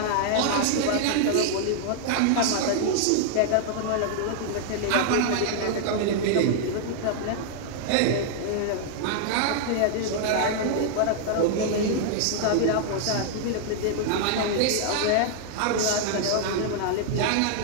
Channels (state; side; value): different; both; correlation -0.01